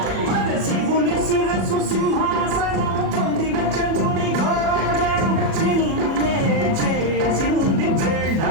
శివుని శిరసు సింహాసనం పొందిన చంద్రుని భోజనం చిన్నే చేసింది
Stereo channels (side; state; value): left; late; 37 ms